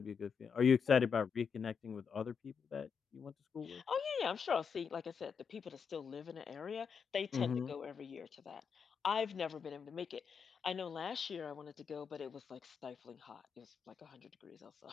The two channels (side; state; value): right; quieter; 6.4 dB